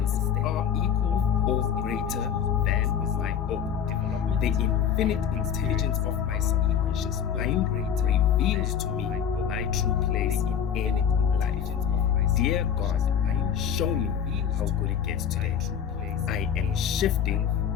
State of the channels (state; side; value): quieter; right; 8.2 dB